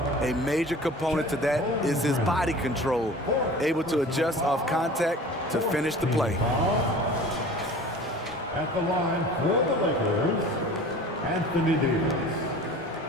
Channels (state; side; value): normal; both; correlation 0.42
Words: a major component to that is his body control, able to adjust off contact to finish the play. At the line for the Lakers, Anthony Davis.